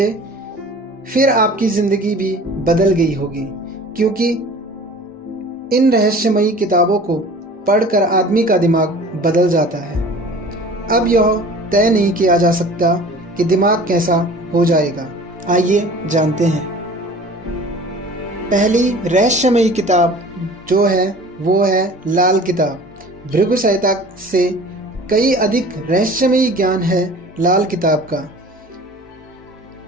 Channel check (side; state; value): both; normal; correlation 0.44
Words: फिर आपकी ज़िंदगी भी बदल गई होगी, क्योंकि इन रहस्यमयी किताबों को पढ़कर आदमी का दिमाग बदल जाता है। अब यह तय नहीं किया जा सकता कि दिमाग कैसा हो जाएगा। आइए जानते हैं। पहली रहस्यमयी किताब जो है वो है लाल किताब। भृगु संहिता से कई अधिक रहस्यमयी ज्ञान है लाल किताब का।